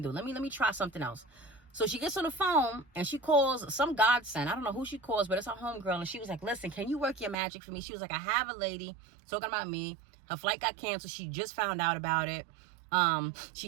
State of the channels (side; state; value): left; drops out; at 7.4 s